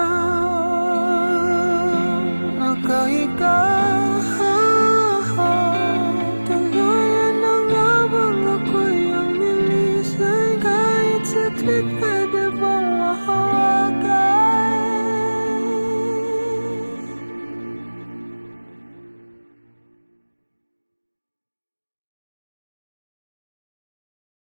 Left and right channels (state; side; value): inverted; both; correlation -1.00